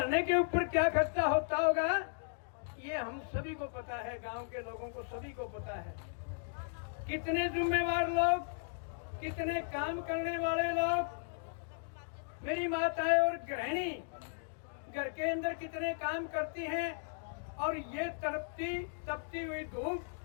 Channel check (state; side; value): silent; right; digital silence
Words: के ऊपर क्या खर्चा होता होगा ये हम सभी को पता है, गांव के लोगों को सभी को पता है। कितने जिम्मेवार लोग, कितने काम करने वाले लोग, मेरी माताएं और गृहिणी घर के अंदर कितने काम करती हैं, और ये तपती हुई धूप,